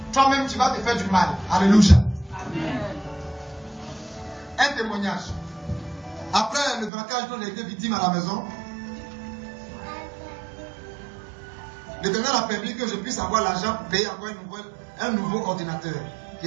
toi-même tu vas te faire du mal. Alléluia. Amen. Un témoignage. Après le braquage dont j'ai été victime à la maison, l'Éternel a permis que je puisse avoir l'argent pour payer encore un nouveau ordinateur qui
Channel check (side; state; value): left; drops out; at 6.9 s